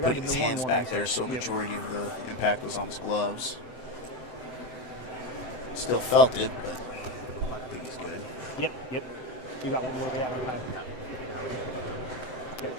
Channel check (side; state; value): right; late; 7.8 ms